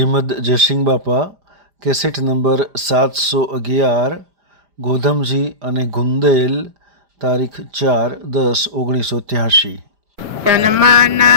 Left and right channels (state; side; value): late; left; 5.0 ms